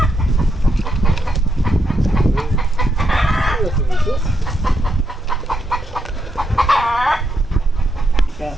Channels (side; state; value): both; normal; correlation 0.80